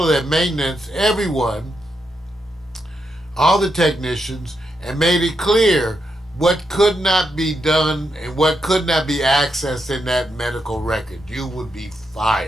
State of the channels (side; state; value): both; normal; correlation 0.82